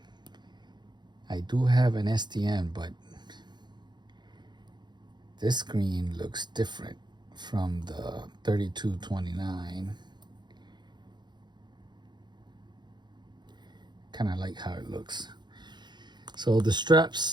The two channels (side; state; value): left; late; 0.21 ms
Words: I do have an STM, but this screen looks different from the 3229. Kind of like how it looks. So the